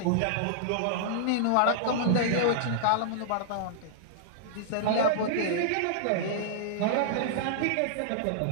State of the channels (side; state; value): both; different; correlation -0.01